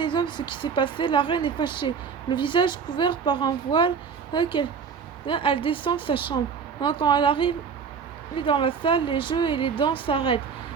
ce qui s'est passé, la reine est fâchée. Le visage couvert par un voile, elle descend de sa chambre. Quand elle arrive dans la salle, les jeux et les danses s'arrêtent.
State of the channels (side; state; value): left; quieter; 6.2 dB